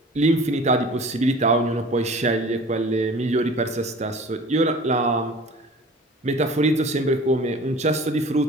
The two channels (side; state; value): both; normal; correlation 0.43